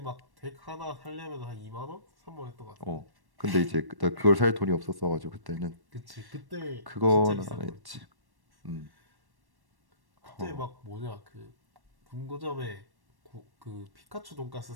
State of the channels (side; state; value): left; late; 1.1 ms